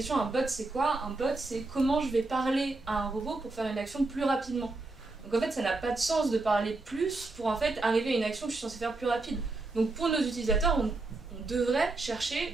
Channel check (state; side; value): quieter; left; 3.2 dB